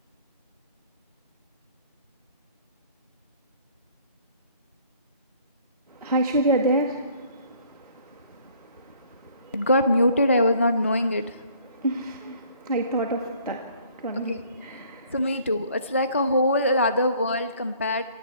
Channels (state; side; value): inverted; both; correlation -0.58